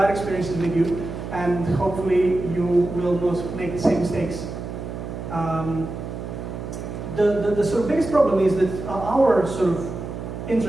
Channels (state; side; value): noise; right; hum, 8 dB below the sound